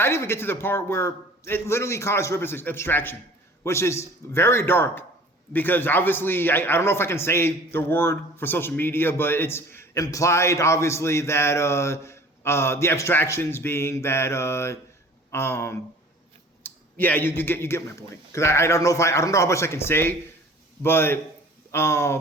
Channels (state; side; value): normal; both; correlation 0.46